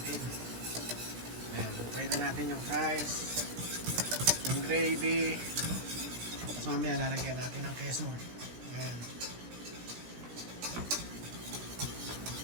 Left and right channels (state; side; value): late; left; 17 ms